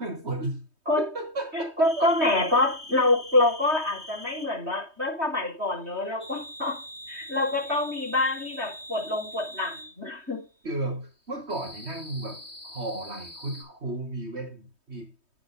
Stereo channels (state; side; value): late; left; 3.2 ms